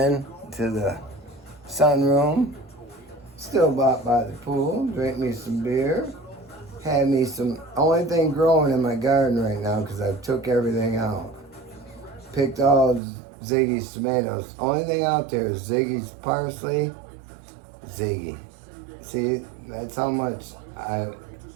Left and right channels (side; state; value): left; drops out; at 13.0 s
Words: to the sunroom, still about by the pool, drink me some beer, had me some, only thing growing in my garden right now, because I took everything out. Picked all Ziggy's tomatoes. Only thing out there is Ziggy's parsley. Ziggy. See, that's how much